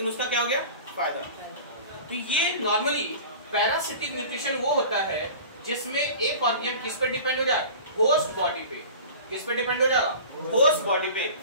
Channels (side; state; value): both; inverted; correlation -0.39